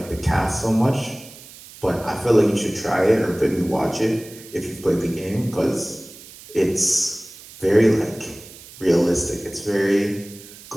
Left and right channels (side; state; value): right; noise; hiss, 18 dB below the sound